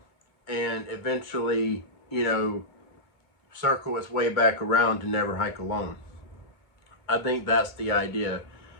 and eventually, circle its way back around to Never Hike Alone. I think that's the idea,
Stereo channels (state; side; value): late; right; 2.2 ms